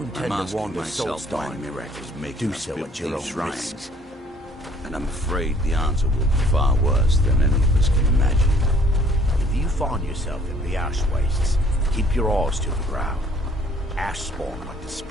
I'm asking myself why miracles make us build these shrines. And I'm afraid the answer will be far worse than any of us can imagine. If you find yourself in the ash wastes, keep your eyes to the ground. Ash spawn like to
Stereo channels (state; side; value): normal; both; correlation 0.58